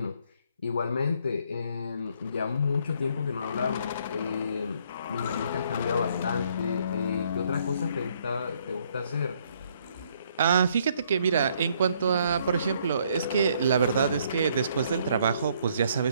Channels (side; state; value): both; inverted; correlation -0.67